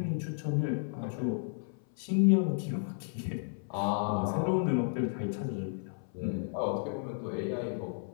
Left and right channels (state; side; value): silent; right; 56 dB below the other